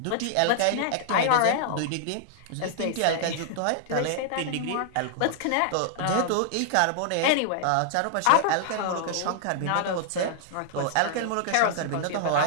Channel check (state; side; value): different; both; correlation -0.01